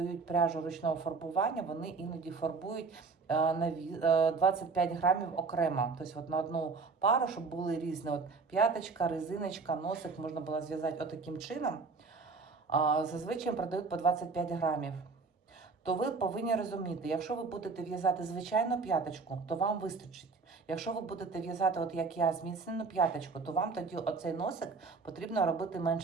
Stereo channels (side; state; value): left; quieter; 4.5 dB